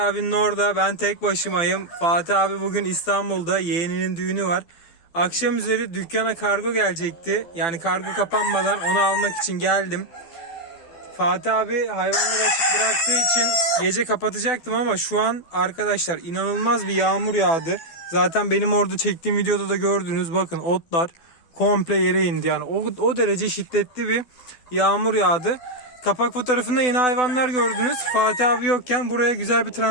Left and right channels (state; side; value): late; right; 12 ms